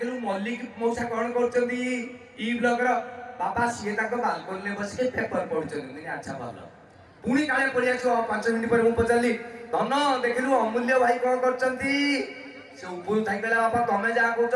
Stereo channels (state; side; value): identical; both; correlation 1.00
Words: ମଲ୍ଲିକ ମଉସା କଣ କରୁଛନ୍ତି E ବ୍ଲକର ବାପା ସିଏ ତାଙ୍କ ବାଲକୋନିରେ ବସିକି ପେପର ପଢୁଛନ୍ତି ଆଚ୍ଛା ଭଲ ପୁଣି କାଳେ ପଳେଇ ଆସିବ 5 ମିନିଟ୍ ପରେ ମୁଁ ପଚାରିଲି ଧନ ଦେଖିଲୁ ଅମୂଲ୍ୟ ଭାଇ କଣ କରୁଛନ୍ତି ସେ ଉପରୁ ଥାଇ କହିଲା ବାପା ତମେ ଯାହା କହୁଛ